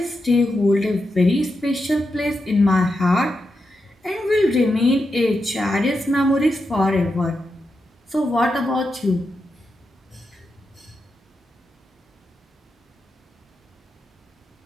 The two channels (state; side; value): normal; both; correlation 0.87